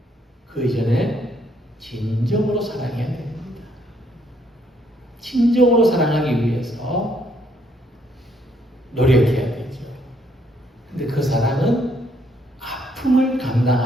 그 이전에 진정으로 사랑해야 됩니다. 진정으로 사랑하기 위해서 노력해야 되죠. 근데 그 사랑은 아픔을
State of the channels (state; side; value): normal; both; correlation 0.69